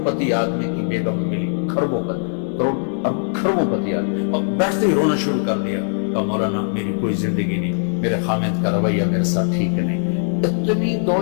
پتی آدمی کی بیگم ملی، کھربوں پتی، کھربوں پتی آدمی، اور بیٹھتے ہی رونا شروع کر دیا، کہا مولانا میری کوئی زندگی نہیں، میرے خامد کا رویہ میرے ساتھ ٹھیک نہیں۔ اتنی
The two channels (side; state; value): right; silent; 65 dB below the other